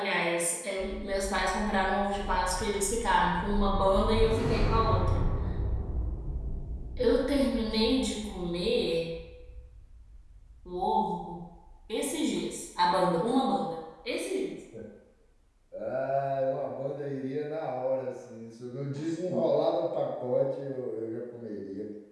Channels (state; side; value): identical; both; correlation 1.00